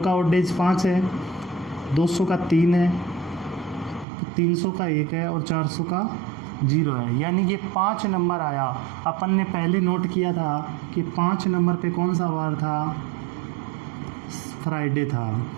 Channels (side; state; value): left; drops out; at 4.0 s